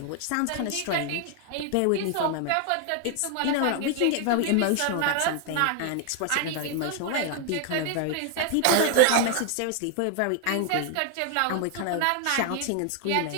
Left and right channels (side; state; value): both; different; correlation 0.00